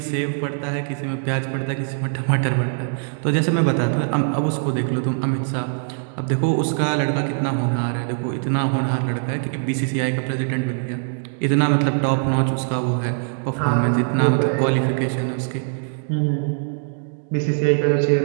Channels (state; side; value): silent; left; 64 dB below the other